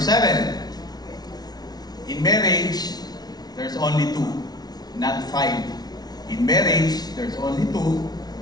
In marriage, there's only 2, not 5. In marriage, there's only 2,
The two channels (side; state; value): right; late; 0.19 ms